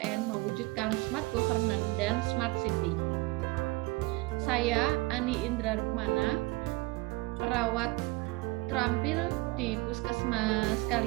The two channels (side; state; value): left; quieter; 23.1 dB